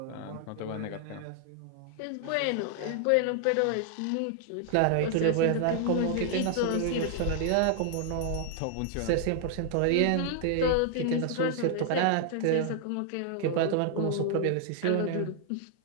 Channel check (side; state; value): both; different; correlation 0.00